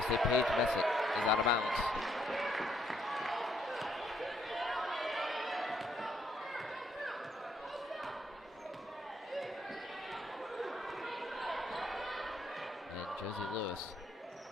say Paige Messick is out of bounds. Josie Lewis,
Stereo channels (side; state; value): both; normal; correlation 0.71